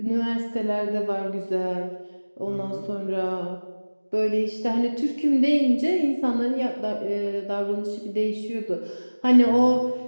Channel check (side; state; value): both; inverted; correlation -1.00